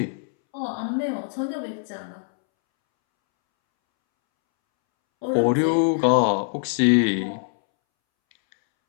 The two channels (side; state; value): right; silent; 63 dB below the other